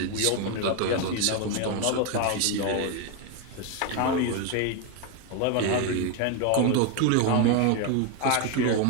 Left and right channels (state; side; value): different; both; correlation 0.01